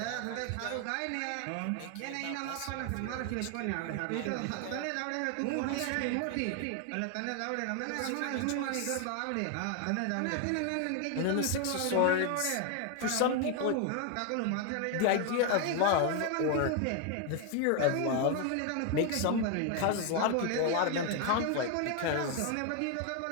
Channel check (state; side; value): different; both; correlation 0.01